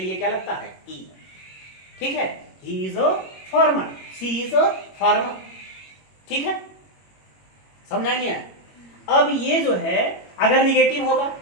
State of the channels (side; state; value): right; late; 21 ms